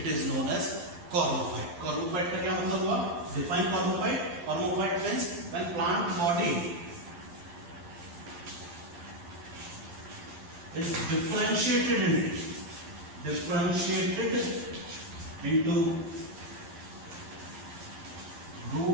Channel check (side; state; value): left; late; 12 ms